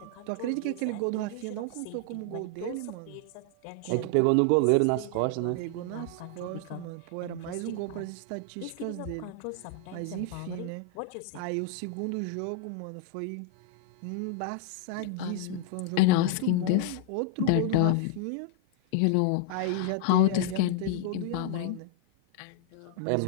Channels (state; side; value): different; both; correlation -0.01